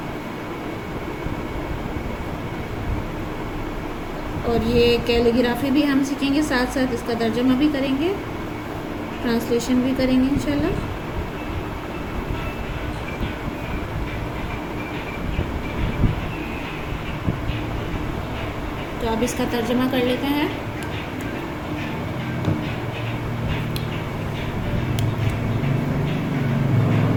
اور یہ کیلیگرافی بھی ہم سیکھیں گے، ساتھ ساتھ اس کا ترجمہ بھی کریں گے، ٹرانسلیشن بھی کریں گے انشاءاللہ. تو اب اس کا ترجمہ کر لیتے ہیں.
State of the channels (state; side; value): identical; both; correlation 1.00